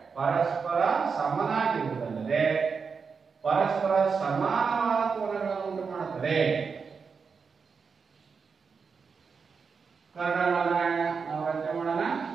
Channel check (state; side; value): quieter; left; 5.5 dB